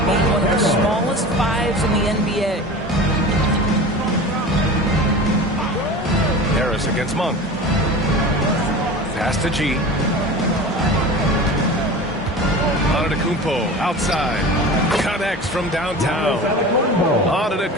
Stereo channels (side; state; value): both; normal; correlation 0.34